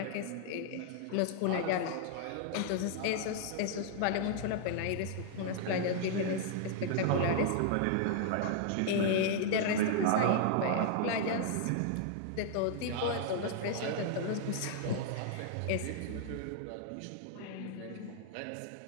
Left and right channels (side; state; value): both; different; correlation 0.00